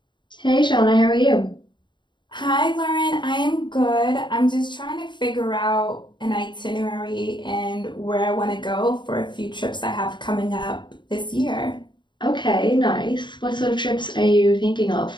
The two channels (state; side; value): late; right; 0.22 ms